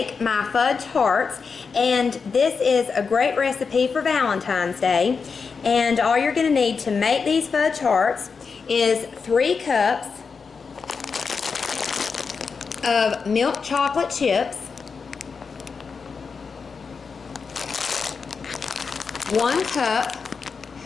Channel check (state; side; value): quieter; right; 5.3 dB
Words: my fudge hearts. And this is a great recipe for Valentine's Day. And all you're going to need to make these fudge hearts is 3 cups of milk chocolate chips, 1 cup